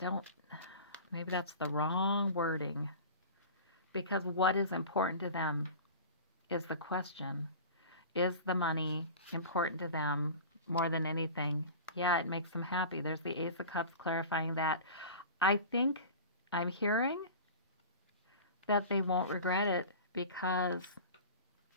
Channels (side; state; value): both; inverted; correlation -0.36